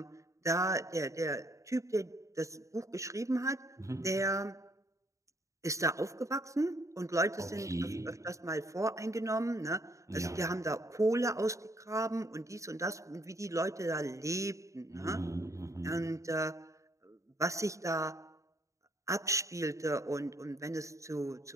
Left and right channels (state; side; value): late; left; 0.15 ms